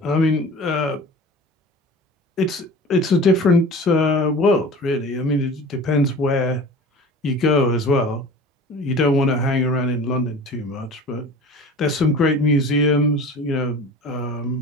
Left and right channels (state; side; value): normal; both; correlation 0.39